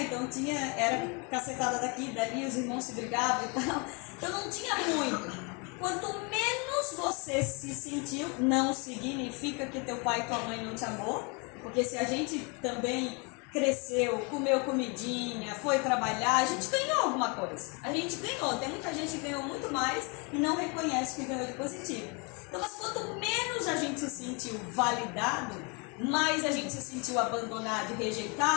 Então era cacetada daqui, dali, os irmãos se brigavam e tal. Então não tinha muito. Quanto menos você se sentiu, não significa que teu pai e tua mãe não te amou. Porque se a gente também cresceu, comeu comidinha, foi trabalhar, a gente ganhou alguma coisa. A gente ganhou. Tem muita gente que ganhou muito mais e não reconhece que ganhou de positivo. Então, mas quanto menos a gente se sentiu validado, mais a gente se sentiu abandonado e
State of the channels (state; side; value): quieter; right; 32.1 dB